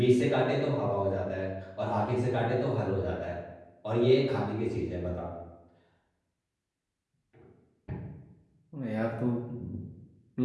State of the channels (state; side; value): identical; both; correlation 1.00